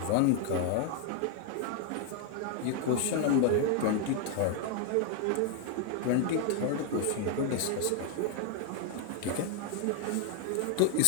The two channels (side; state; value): both; different; correlation 0.01